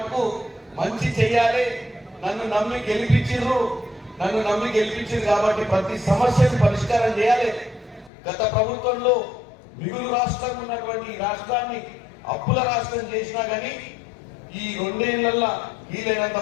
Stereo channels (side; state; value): right; drops out; at 8.1 s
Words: మంచి చెయ్యాలి. నన్ను నమ్మి గెలిపించారు కాబట్టి ప్రతి సమస్యను పరిష్కారం చేయాలి. గత ప్రభుత్వంలో మిగులు రాష్ట్రం ఉన్నటువంటి ఈ రాష్ట్రాన్ని అప్పుల రాష్ట్రం చేసినా కానీ ఈ 2 ఏళ్లలో వీలైనంత